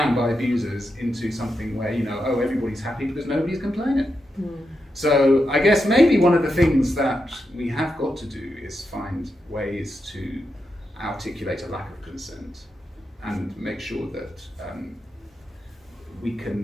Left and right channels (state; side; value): normal; both; correlation 0.86